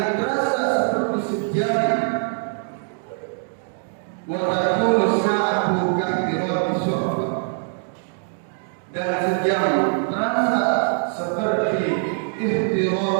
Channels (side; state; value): left; silent; 61 dB below the other